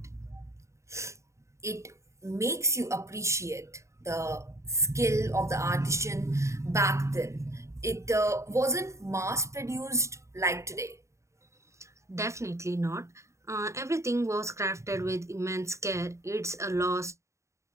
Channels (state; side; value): late; left; 0.14 ms